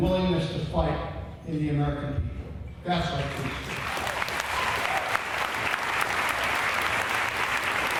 willingness to fight in the American people. That's our truth.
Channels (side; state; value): both; identical; correlation 1.00